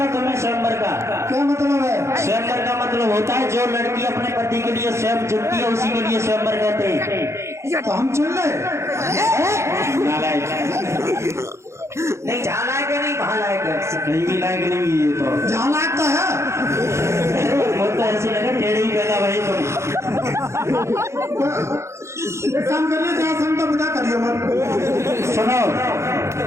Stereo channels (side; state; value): left; late; 0.13 ms